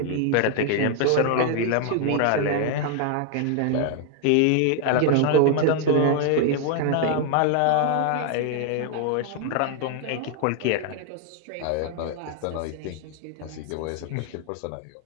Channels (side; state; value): both; different; correlation 0.00